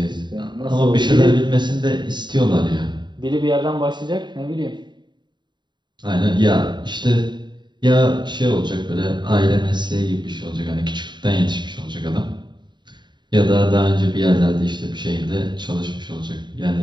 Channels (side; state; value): left; late; 0.22 ms